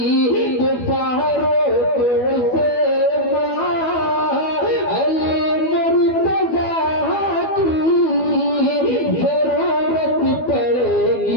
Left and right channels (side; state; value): right; late; 12 ms